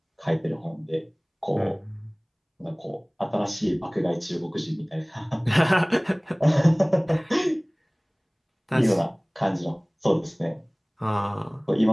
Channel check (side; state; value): both; identical; correlation 1.00